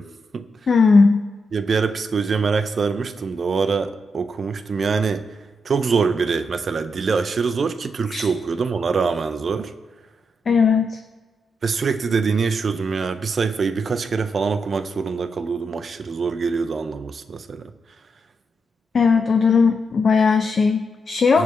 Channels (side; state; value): both; normal; correlation 0.83